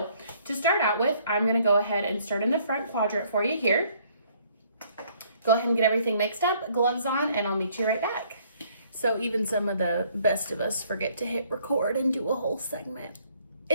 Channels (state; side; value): inverted; both; correlation -0.63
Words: to start out with, I'm going to go ahead and start in the front quadrant for you here. Go ahead and get everything mixed up, gloves on, and I'll meet you right back. So even some of the best of us forget to hit record and do a whole segment.